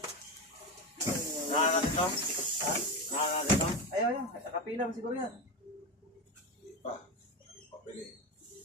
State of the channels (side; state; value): both; normal; correlation 0.17